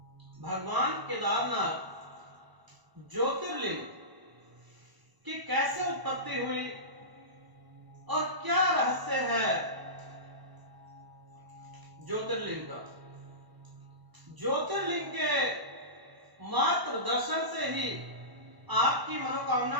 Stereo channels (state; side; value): late; left; 1.0 ms